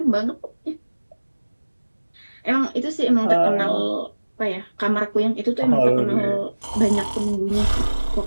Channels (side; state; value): both; inverted; correlation -1.00